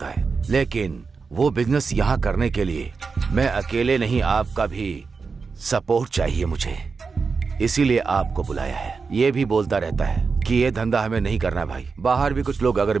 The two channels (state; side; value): quieter; left; 4.9 dB